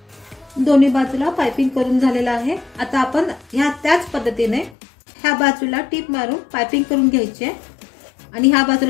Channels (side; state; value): right; drops out; at 4.8 s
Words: दोन्ही बाजूला पाइपिंग करून झालेला आहे। आता आपण ह्या त्याच पद्धतीने ह्या बाजूला टीप मारून पाइपिंग करून घ्यायची आणि ह्या